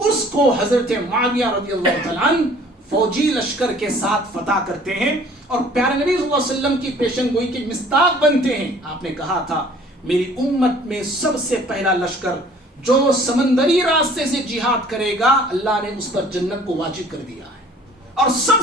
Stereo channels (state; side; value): normal; both; correlation 0.53